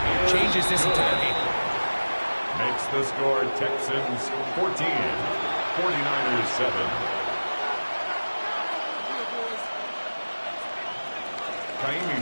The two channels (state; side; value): inverted; both; correlation -1.00